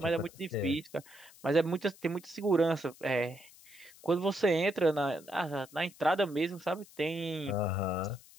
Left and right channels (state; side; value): noise; left; hiss, 23 dB below the sound